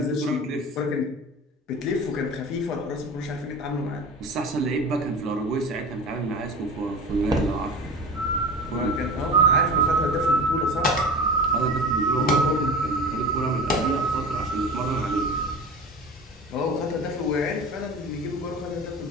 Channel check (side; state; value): both; normal; correlation 0.34